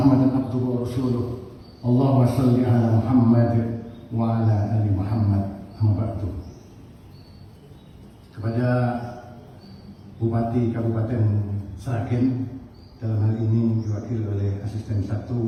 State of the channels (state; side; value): identical; both; correlation 1.00